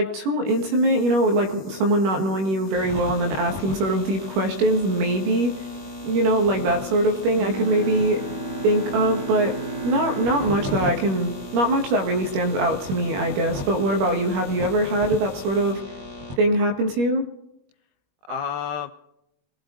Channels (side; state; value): left; late; 21 ms